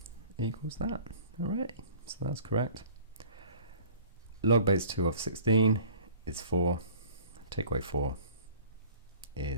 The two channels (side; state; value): both; inverted; correlation -0.48